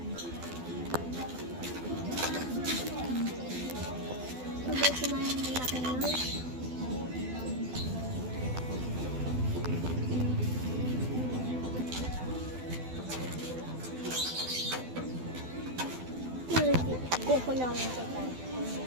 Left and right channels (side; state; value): left; late; 12 ms